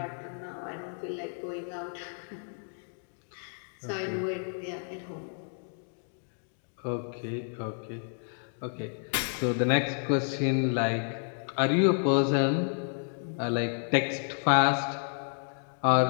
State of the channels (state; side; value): silent; right; 57 dB below the other